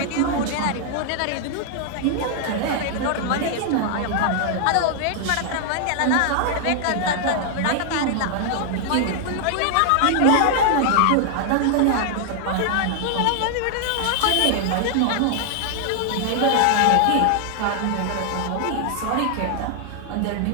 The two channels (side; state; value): both; different; correlation 0.00